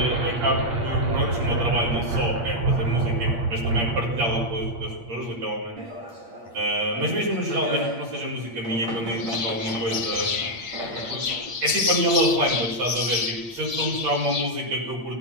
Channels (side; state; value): left; late; 8.6 ms